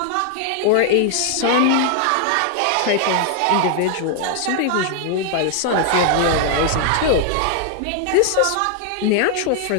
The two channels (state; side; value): different; both; correlation 0.00